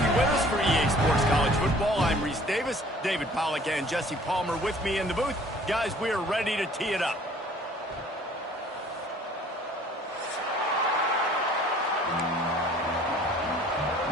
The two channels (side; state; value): both; normal; correlation 0.53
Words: with us for EA Sports College Football. I'm Reese Davis, David Pollack and Jesse Palmer with me in the booth. Guys, we are ready to tee it up.